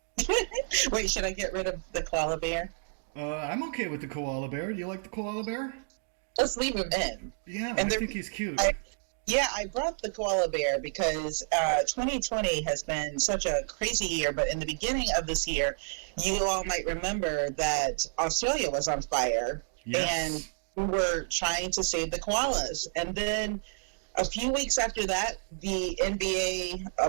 Wait, should I get rid of the koala bear? I'm okay with the koala bear. Do you like the koala bear? Let's leave him in. Yeah, And I think he's cute. I brought the koala bear because 2020 has been such a crazy year, but in the beginning of this year, you all might remember that Australia was on fire, Yes. and we were trying to save the koalas. And then a few weeks after that, the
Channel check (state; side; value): silent; left; digital silence